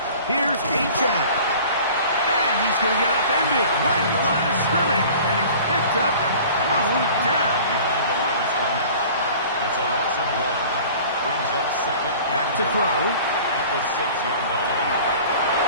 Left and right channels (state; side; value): inverted; both; correlation -0.45